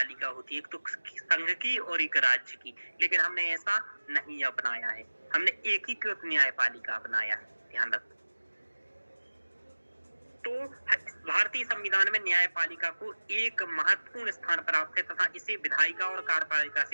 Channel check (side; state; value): both; inverted; correlation -1.00